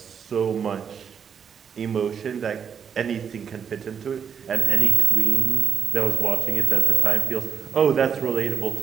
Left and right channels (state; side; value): quieter; left; 7.3 dB